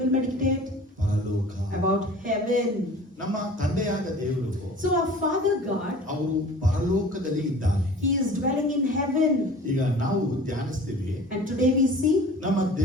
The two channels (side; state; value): both; normal; correlation 0.44